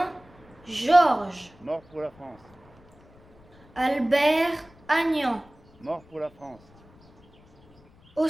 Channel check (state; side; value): noise; left; rumble, 28 dB below the sound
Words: Georges. Mort pour la France. Albert Agnan. Mort pour la France.